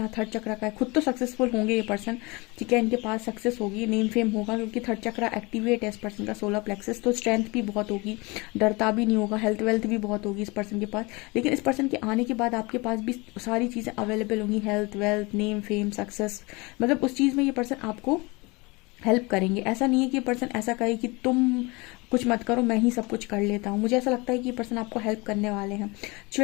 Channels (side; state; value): right; quieter; 25.8 dB